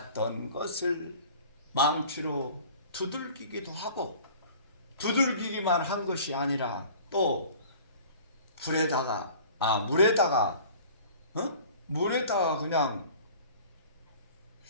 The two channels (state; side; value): inverted; both; correlation -0.46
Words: 것을 망치로 두들기기도 하고, 두들기기만 한 것이 아니라 또 물에다가 그냥